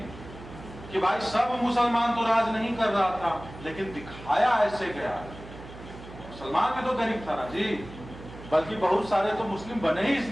कि भाई सब मुसलमान तो राज नहीं कर रहा था, लेकिन दिखाया ऐसे गया। मुसलमान भी तो गरीब था ना जी, बल्कि बहुत सारे तो मुस्लिम बने ही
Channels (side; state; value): right; noise; hum, 15 dB below the sound